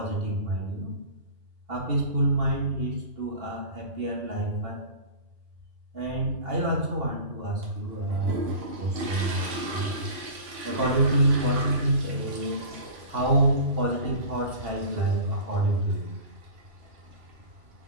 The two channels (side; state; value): left; late; 2.8 ms